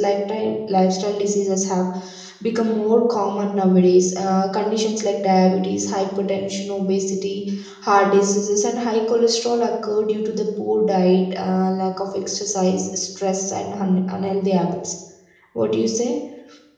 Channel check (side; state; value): both; identical; correlation 1.00